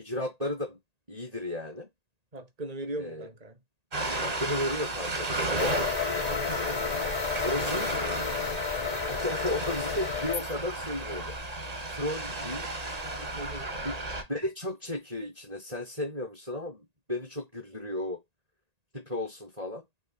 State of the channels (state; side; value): late; left; 1.8 ms